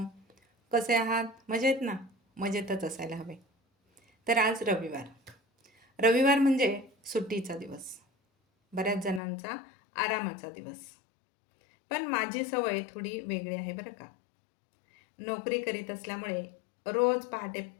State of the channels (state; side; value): drops out; right; at 9.2 s